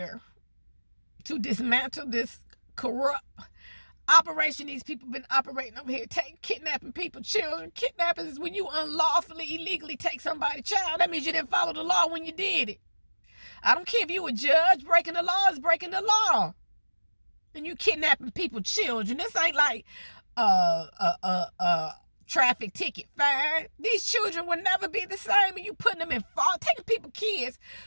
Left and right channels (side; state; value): both; inverted; correlation -1.00